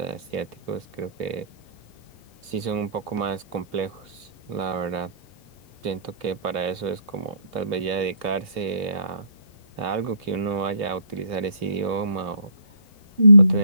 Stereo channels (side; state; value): left; late; 3.0 ms